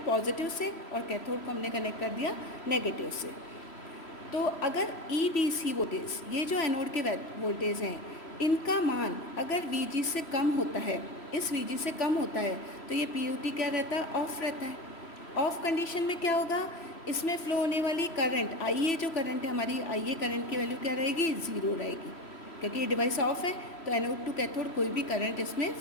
पॉजिटिव से, और कैथोड को हमने कनेक्ट कर दिया नेगेटिव से। तो अगर EDC वोल्टेज, ये जो एनोड के वोल्टेज हैं, इनका मान अगर VG से कम होता है, इस VG से कम होता है, तो ये PUT क्या रहता है, ऑफ रहता है। ऑफ कंडीशन में क्या होगा, इसमें फ्लो होने वाली करंट IA, जो करंट है हमारी IA करंट की वैल्यू क्या रहेगी, 0 रहेगी, क्योंकि ये डिवाइस ऑफ है। तो एनोड टू कैथोड कोई भी करंट इसमें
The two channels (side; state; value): right; late; 3.1 ms